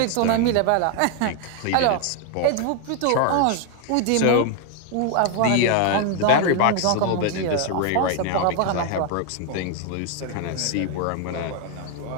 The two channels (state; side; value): different; both; correlation 0.00